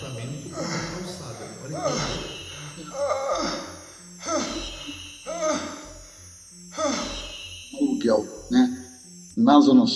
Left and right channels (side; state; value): both; identical; correlation 1.00